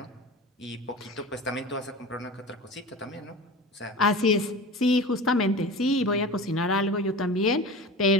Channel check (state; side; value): normal; both; correlation 0.33